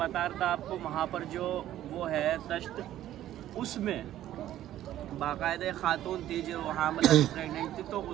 रहा था आपको, वहाँ पर जो वो है तश्त, उसमें बाकायदा खातून थी जो वहाँ मतलब प्रेगनेंट थी, तो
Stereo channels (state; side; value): quieter; left; 12.9 dB